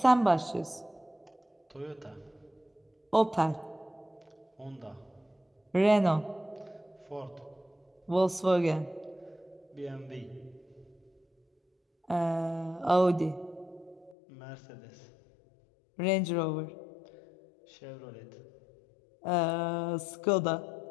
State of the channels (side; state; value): right; drops out; at 14.2 s